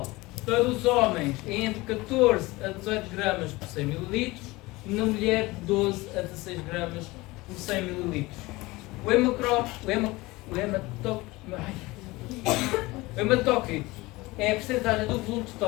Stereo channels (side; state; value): right; quieter; 21.3 dB